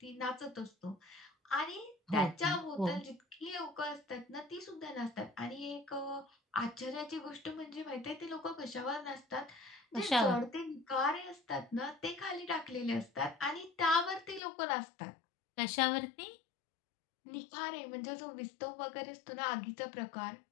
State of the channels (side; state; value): right; drops out; at 14.4 s